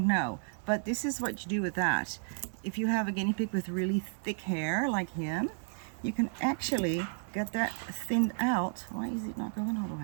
know, but this is what you do with that. If you have a guinea pig with really thick hair like him, you can actually get that thinned out. Why is it not going all the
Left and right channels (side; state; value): left; silent; digital silence